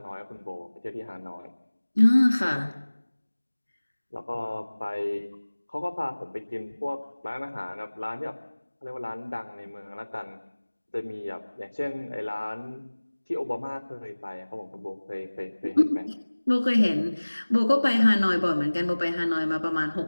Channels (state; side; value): inverted; both; correlation -1.00